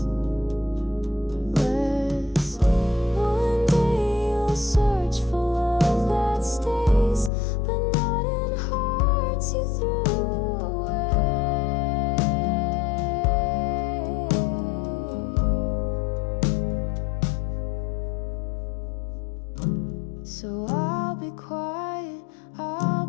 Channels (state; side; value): drops out; right; at 7.3 s